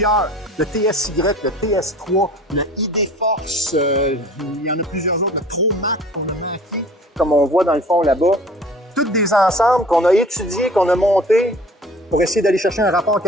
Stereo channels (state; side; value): normal; both; correlation 0.46